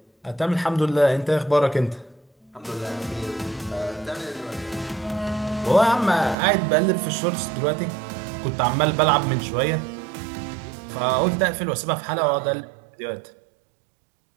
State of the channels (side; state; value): left; drops out; at 6.4 s